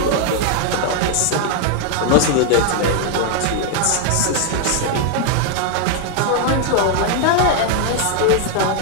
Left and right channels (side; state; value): both; different; correlation 0.00